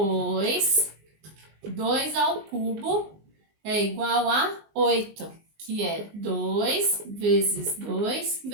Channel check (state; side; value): late; left; 19 ms